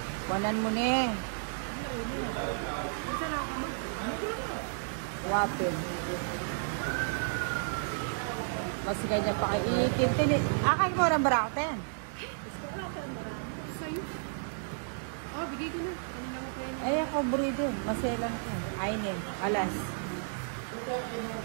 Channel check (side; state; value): left; silent; digital silence